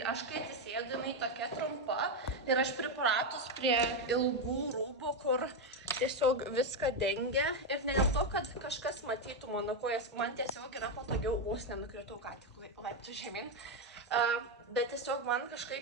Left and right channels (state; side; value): normal; both; correlation 0.06